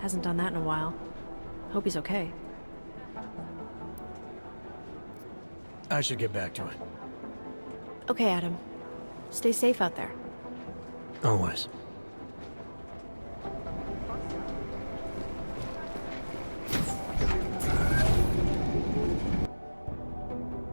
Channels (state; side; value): inverted; both; correlation -1.00